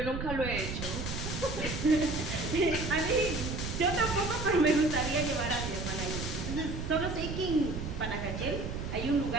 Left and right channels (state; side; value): noise; right; rumble, 5 dB below the sound